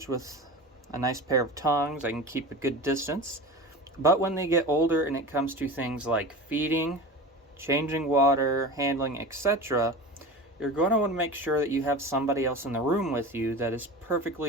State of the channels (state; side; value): normal; both; correlation 0.32